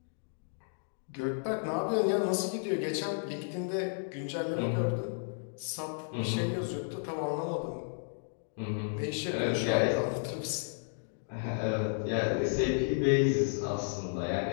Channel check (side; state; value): right; silent; digital silence